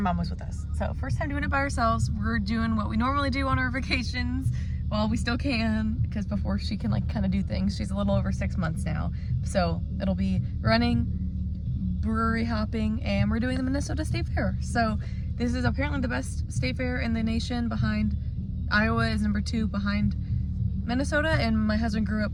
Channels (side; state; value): both; identical; correlation 1.00